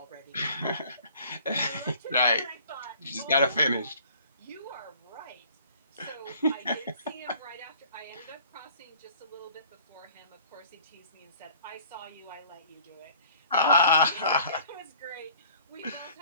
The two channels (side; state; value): both; inverted; correlation -0.52